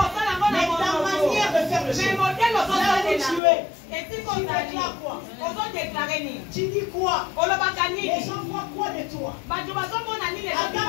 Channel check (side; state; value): right; drops out; at 3.4 s